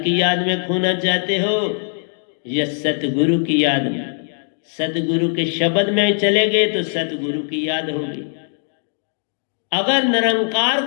याद में खोना चाहते हो या सतगुरु की याद में? सतगुरु के शब्द में चले गए तो सतगुरु की याद होगी। अगर निरंकार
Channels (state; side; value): silent; right; digital silence